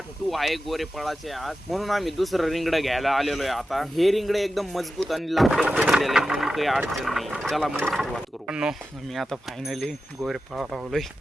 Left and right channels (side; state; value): both; normal; correlation 0.92